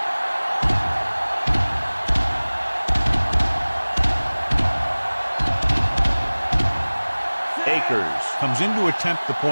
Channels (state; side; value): inverted; both; correlation -1.00